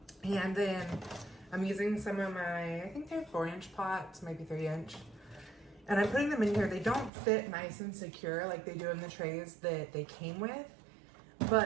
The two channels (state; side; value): drops out; left; at 7.1 s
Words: And then I'm using some of my, I think they're 4-inch pots, maybe 3-inch. And I'm putting them in here. They don't fit nice and secure like they do in the trays that they came with.